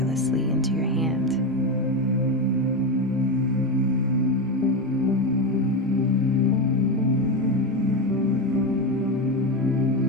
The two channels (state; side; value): normal; both; correlation 0.14